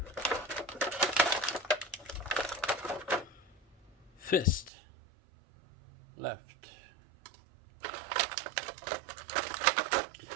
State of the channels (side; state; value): left; drops out; at 4.7 s